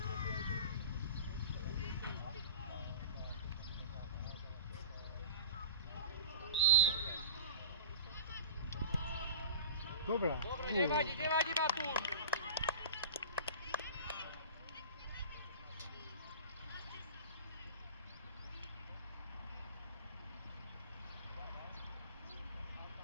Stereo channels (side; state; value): both; inverted; correlation -0.36